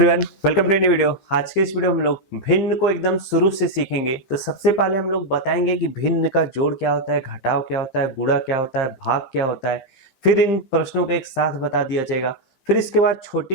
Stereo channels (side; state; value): right; late; 15 ms